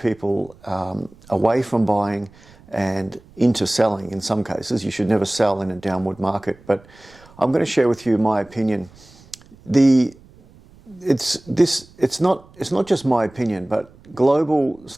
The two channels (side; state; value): right; noise; rumble, 26 dB below the sound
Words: away from buying and into selling in some cases. You should never sell in a downward market, but I'm going to share with you my opinion. It's not just my opinion, but global